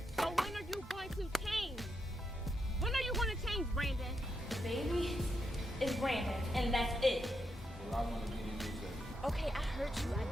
So when are you going to change? When are you going to change, Brandon? Baby is Brandon, and that's it. Well, I want to be the new Okay, I heard you.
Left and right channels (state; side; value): normal; both; correlation 0.82